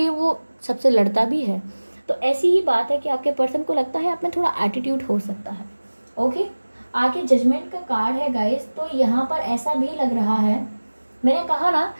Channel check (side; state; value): both; inverted; correlation -1.00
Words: वो सबसे लड़ता भी है। तो ऐसी ही बात है कि आपके पर्सन को लगता है आप में थोड़ा एटीट्यूड हो सकता है, ओके। आगे जजमेंट का कार्ड है गाइस। तो यहाँ पर ऐसा भी लग रहा है, मैंने कहा ना